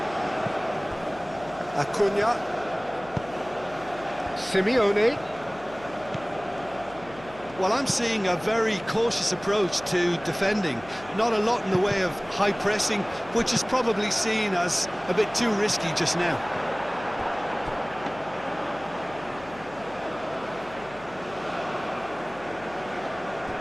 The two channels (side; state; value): left; noise; hum, 19 dB below the sound